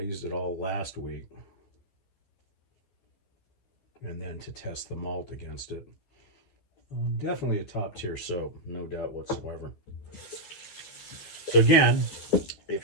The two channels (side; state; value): right; late; 11 ms